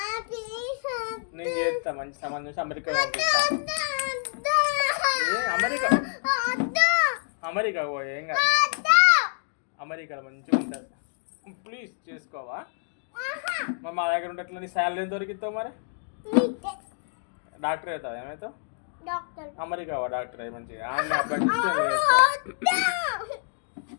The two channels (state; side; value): silent; right; digital silence